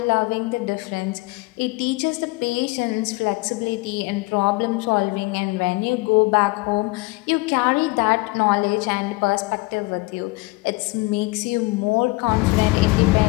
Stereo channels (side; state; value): right; quieter; 24.1 dB